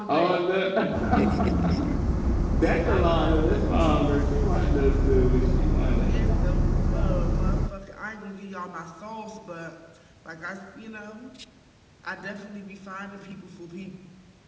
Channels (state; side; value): identical; both; correlation 1.00